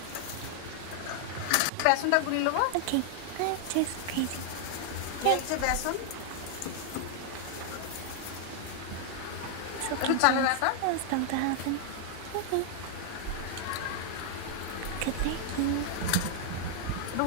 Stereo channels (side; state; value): both; different; correlation 0.00